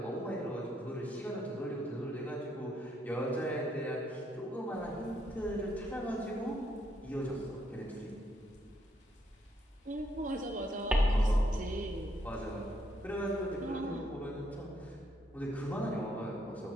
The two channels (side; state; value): both; normal; correlation 0.74